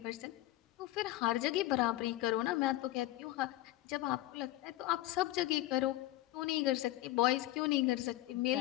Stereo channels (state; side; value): quieter; right; 16.2 dB